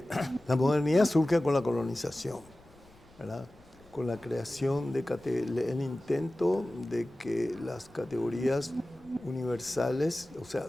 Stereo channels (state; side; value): noise; left; rumble, 27 dB below the sound